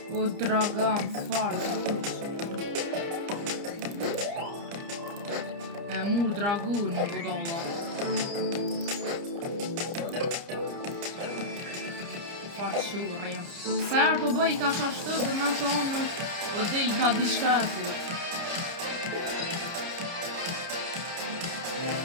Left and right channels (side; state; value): left; late; 30 ms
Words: O dragan, farë. E mur dragu një budolla. Faqurem. Ferë po bëj ka qashtë dhe me thonë o del ka diçka e thot.